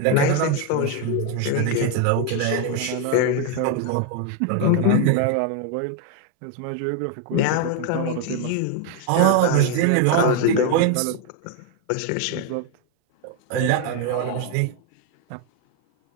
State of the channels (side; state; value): both; different; correlation 0.01